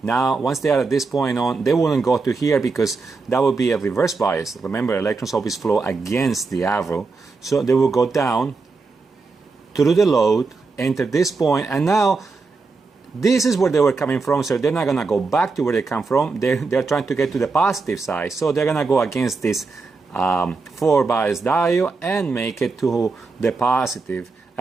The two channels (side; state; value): left; quieter; 4.2 dB